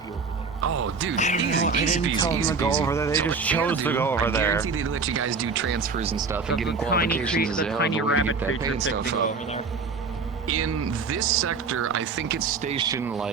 over there. Oh, dude, I didn't tell them to go over there. They just chose to go over there. I guarantee they let you guys do transfers and stuff and getting qualifications. The tiny rabbit creature picked to go over there. In this sector, I think it's stationed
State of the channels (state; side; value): quieter; left; 4.7 dB